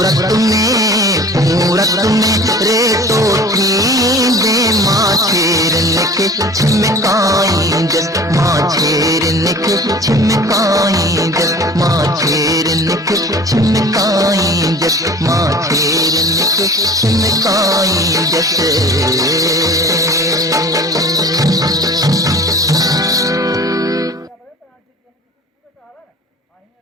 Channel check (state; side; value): normal; both; correlation 0.42